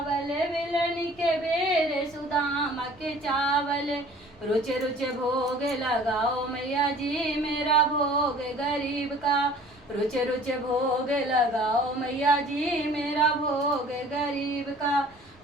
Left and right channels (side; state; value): right; noise; rumble, 28 dB below the sound